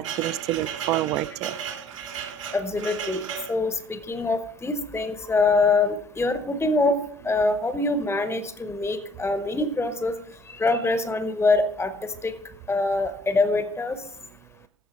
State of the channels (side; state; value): both; normal; correlation 0.60